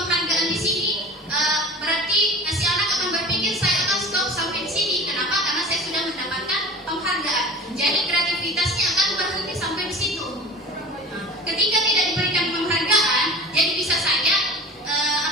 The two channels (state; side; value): normal; both; correlation 0.38